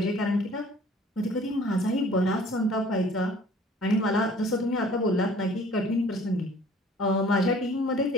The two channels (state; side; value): normal; both; correlation 0.52